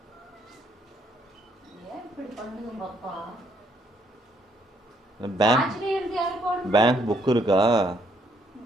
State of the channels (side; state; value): both; normal; correlation 0.70